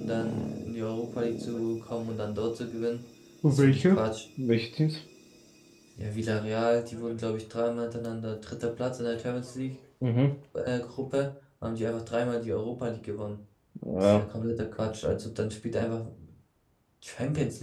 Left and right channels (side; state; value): both; identical; correlation 1.00